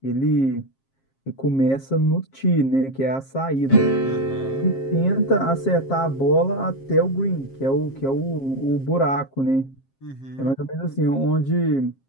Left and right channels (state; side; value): late; right; 7.5 ms